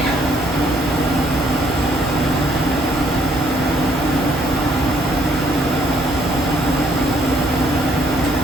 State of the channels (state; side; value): normal; both; correlation 0.67